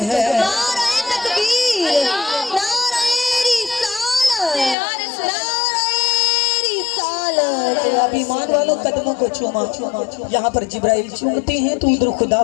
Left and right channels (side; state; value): right; drops out; at 4.8 s